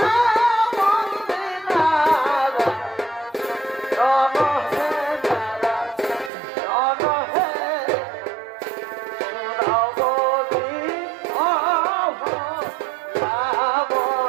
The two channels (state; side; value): drops out; left; at 6.3 s